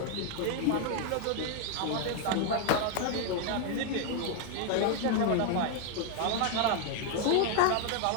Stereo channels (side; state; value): both; different; correlation 0.01